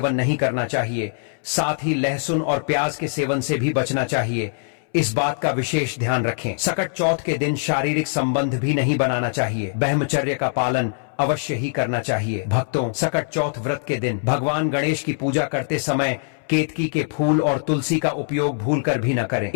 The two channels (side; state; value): right; silent; 64 dB below the other